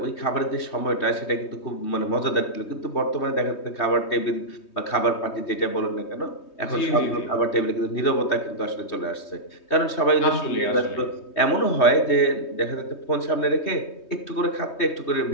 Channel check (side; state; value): right; late; 3.2 ms